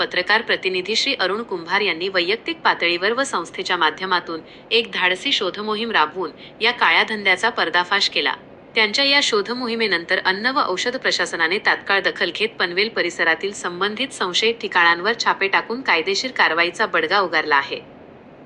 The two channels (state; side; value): identical; both; correlation 1.00